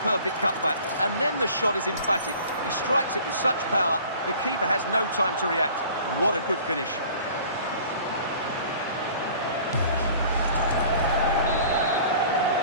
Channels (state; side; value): inverted; both; correlation -0.48